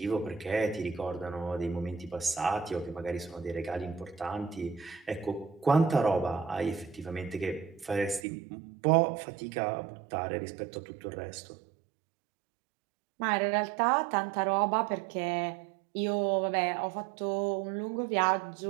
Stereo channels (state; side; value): drops out; left; at 8.2 s